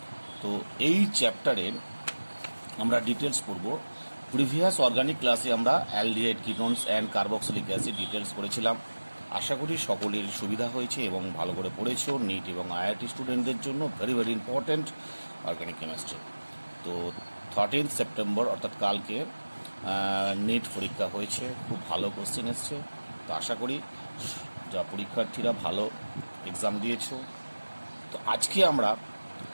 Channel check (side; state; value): both; inverted; correlation -1.00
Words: তো এই চ্যাপ্টারের আমরা ডিটেলস পড়ব। প্রিভিয়াস অর্গানিক ক্লাসে আমরা aldehyde ketones and carboxylic acid details পড়েছিলাম। আশা করি সকলের সুবিধা হয়েছে এবং ভালো করে পড়েছো। নিট এবং আইআইটি স্টুডেন্টদের জন্য very very important organic chemistry. তো 13 সেপ্টেম্বর অর্থাৎ কালকে নিট পরীক্ষা হয়েছে, খুব ভালো কোশ্চেন এসছে। তো আশা করি যা পরীক্ষার্থীরা ভালো এক্সাম দিয়েছো। তো আজকে আমরা